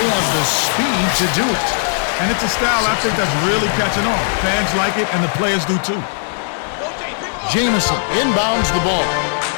They have the speed to do it. And it's a style I think that's really catching on. Fans like it, and the players do too. Jamison inbounds the ball.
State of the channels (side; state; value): right; silent; 58 dB below the other